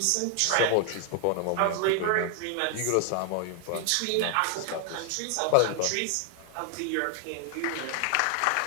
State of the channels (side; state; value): both; different; correlation 0.00